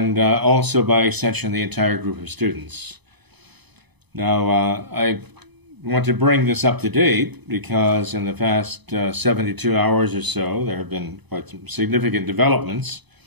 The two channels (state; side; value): late; left; 0.99 ms